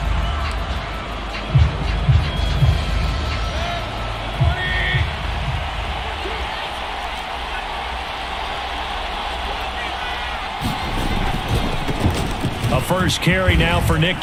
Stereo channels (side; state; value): both; identical; correlation 1.00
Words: A first carry now for Nick